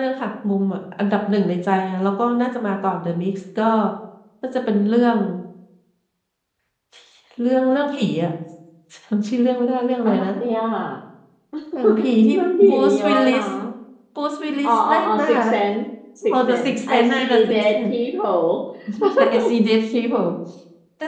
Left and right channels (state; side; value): identical; both; correlation 1.00